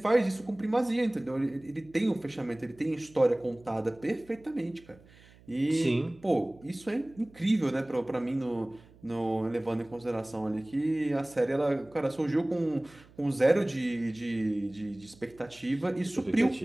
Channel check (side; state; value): right; noise; hum, 25 dB below the sound